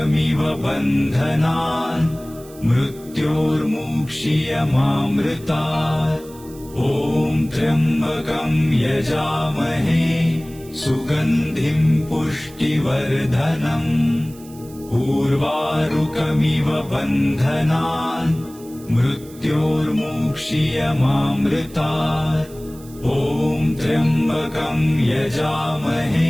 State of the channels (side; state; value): right; noise; hiss, 22 dB below the sound